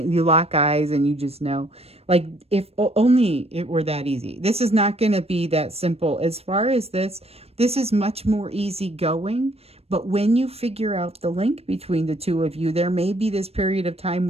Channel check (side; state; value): left; late; 0.29 ms